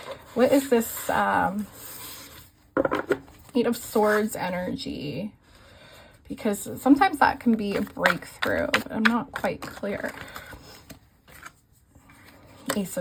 what is this 8 of Swords energy? Because sometimes that can be a breakthrough, but I'm not quite clear. Ace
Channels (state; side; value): identical; both; correlation 1.00